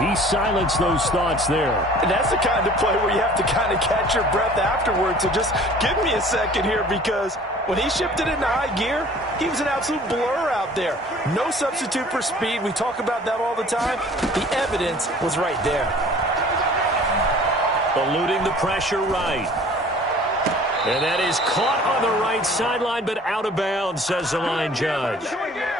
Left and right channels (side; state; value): both; normal; correlation 0.49